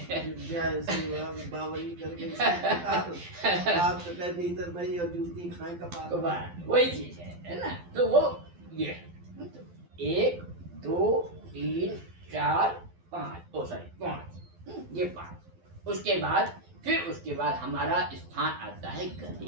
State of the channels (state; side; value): late; left; 12 ms